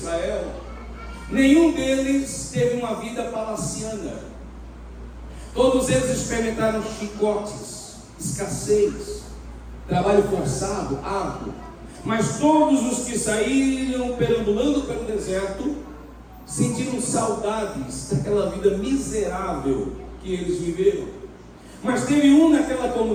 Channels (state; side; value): identical; both; correlation 1.00